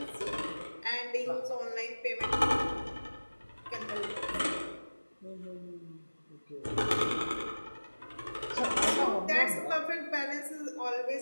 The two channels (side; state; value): both; inverted; correlation -1.00